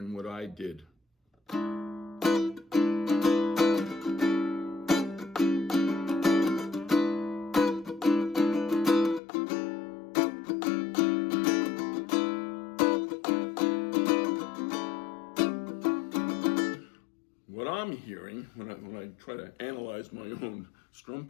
what I did. What I'm hearing, when I try to analyze my own strum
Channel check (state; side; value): drops out; right; at 9.2 s